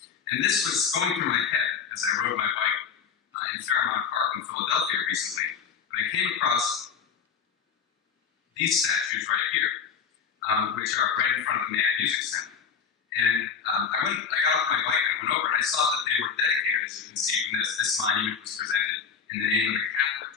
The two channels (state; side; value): quieter; right; 6.4 dB